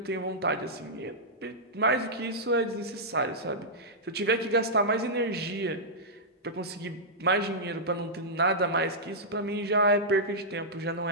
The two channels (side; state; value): both; normal; correlation -0.10